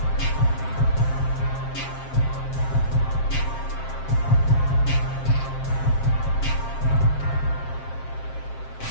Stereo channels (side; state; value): right; late; 7.5 ms